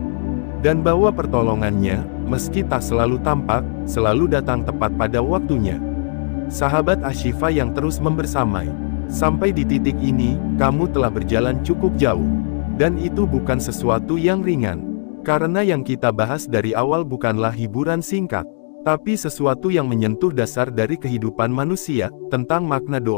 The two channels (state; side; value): silent; right; digital silence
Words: Dan bahwa pertolongannya, meski tak selalu tampak, selalu datang tepat pada waktunya. Sahabat Ashifa yang terus membersamai, sampai di titik ini, kamu telah berjalan cukup jauh. Dan itu bukan sesuatu yang ringan. Karena yang kita bahas dari awal bukanlah hiburan singkat, tapi sesuatu yang menyentuh dasar dari kehidupan manusia, tentang makna